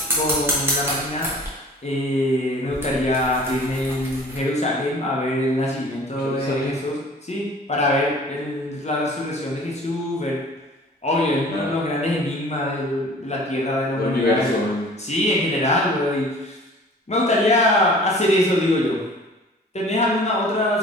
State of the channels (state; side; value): normal; both; correlation 0.47